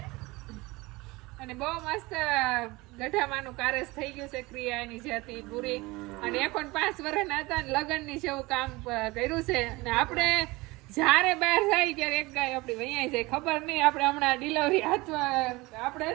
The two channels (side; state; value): left; quieter; 22.4 dB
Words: અને બહુ મસ્ત ગઢામાંનું કારેસ થઈ ગયું છે. ક્રિયા એની જે હતી પૂરી અને એ પણ 5 વર્ષના હતા ને લગ્નની જેવું કામ કર્યું છે. અને આપણે જ્યારે બહાર જાય ત્યારે એક ગાય આપણી વૈયાઈ જાય ખબર નહીં. આપણે હમણાં ડિલિવરી હાથમાં આપણે